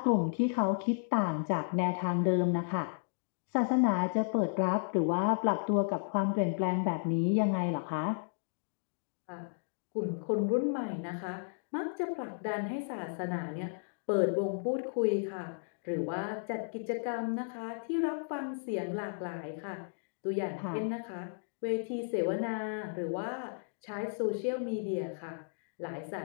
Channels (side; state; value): right; silent; digital silence